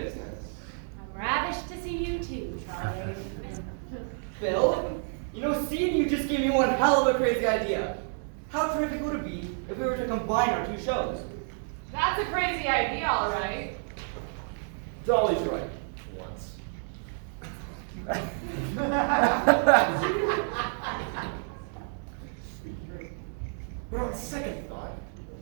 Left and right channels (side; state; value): left; silent; 58 dB below the other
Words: I'm ravished to see you too, Charlie. Bill, you know, seeing you just gave me one hell of a crazy idea. How terrific would it be if we were to combine our two shows? That's a crazy idea, all right. Dolly's right. Once. But on second thought,